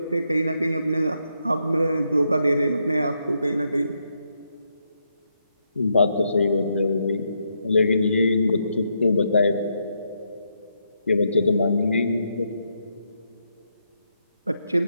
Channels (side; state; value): both; inverted; correlation -0.79